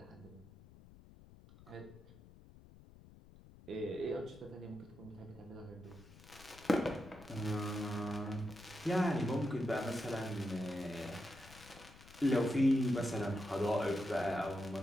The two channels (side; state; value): left; noise; rumble, 20 dB below the sound